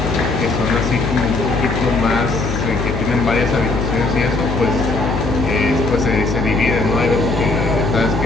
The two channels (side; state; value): left; noise; hum, 3 dB below the sound